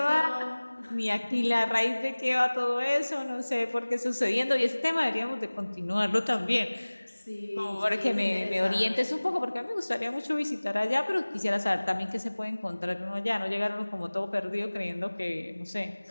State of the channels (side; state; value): both; inverted; correlation -1.00